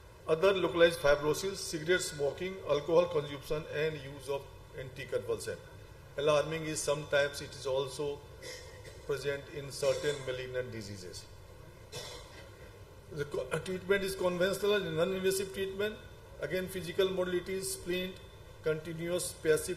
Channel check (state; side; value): identical; both; correlation 1.00